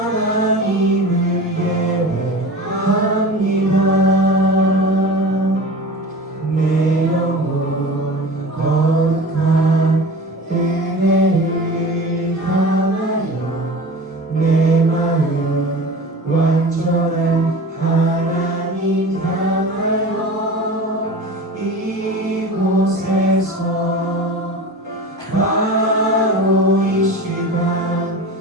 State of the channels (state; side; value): normal; both; correlation 0.35